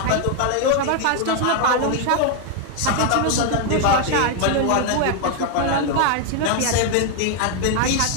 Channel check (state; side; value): different; both; correlation 0.00